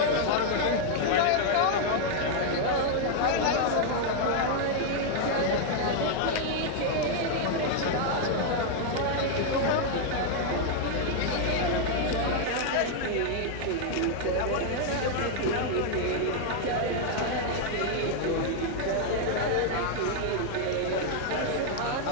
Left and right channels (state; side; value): different; both; correlation 0.00